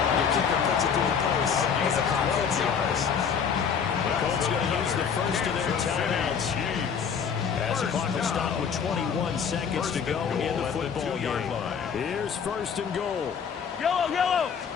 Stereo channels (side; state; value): right; quieter; 6.9 dB